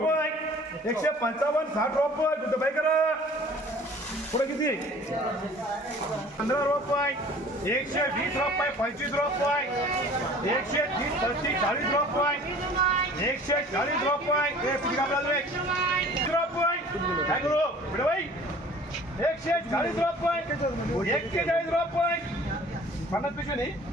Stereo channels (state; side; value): normal; both; correlation 0.48